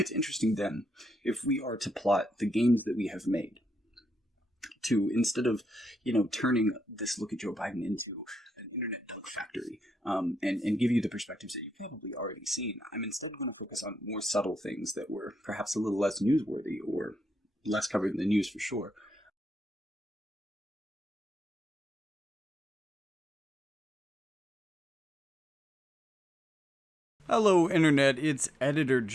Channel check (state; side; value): normal; both; correlation 0.83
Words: interesting then, if we are to plot the gains that we have made, to instead of, turning this look at Joe Biden into an internet dunk factory and give you the perspectives that you've probably already seen, I'm instead going to focus on more subtle things that were perhaps a little less newsworthy or less covered in the news for sure. Hello, Internet. It's Editor